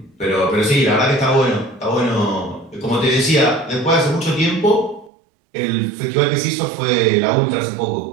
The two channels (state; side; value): drops out; left; at 5.1 s